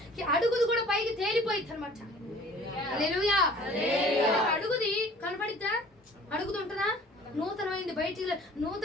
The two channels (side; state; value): both; normal; correlation 0.50